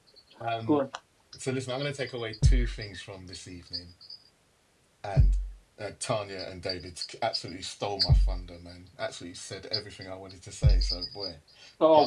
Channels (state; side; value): identical; both; correlation 1.00